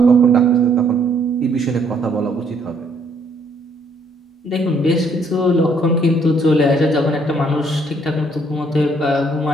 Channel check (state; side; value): normal; both; correlation 0.66